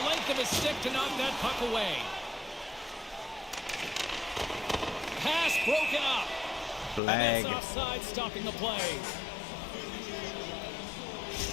length of his stick to knock that puck away. Pass broken up. Flag. And that's offside, stopping the play.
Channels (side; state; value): right; drops out; at 7.0 s